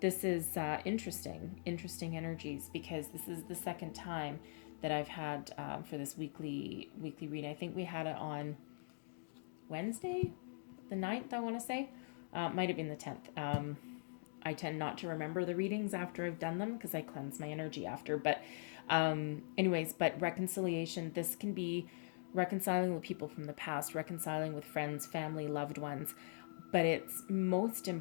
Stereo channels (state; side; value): silent; right; digital silence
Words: this is interesting energies, because this is the second time that I've had for this weekly reading. I think we had it on Wednesday, the 9th, I want to say. Might have been the 10th. I tend not to remember the readings after I've done them because I cleanse my energy after. But but reconciliation, this can be reconciling with people from the past, reconciling with friends, family, loved ones. But it's most